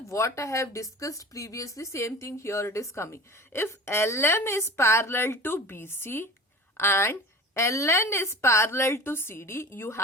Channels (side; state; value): both; normal; correlation 0.37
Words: what I have discussed previously, same thing here it is coming. If LM is parallel to BC and LN is parallel to CD, you